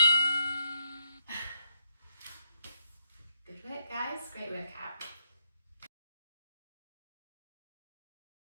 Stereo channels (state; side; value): inverted; both; correlation -0.76